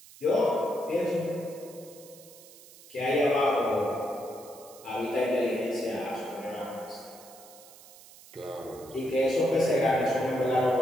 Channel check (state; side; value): noise; right; hiss, 20 dB below the sound